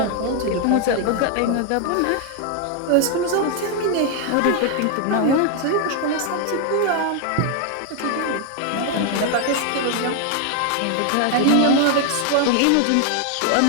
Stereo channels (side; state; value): both; different; correlation 0.00